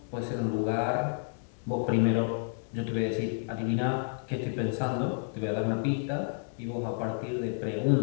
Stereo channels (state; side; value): silent; right; digital silence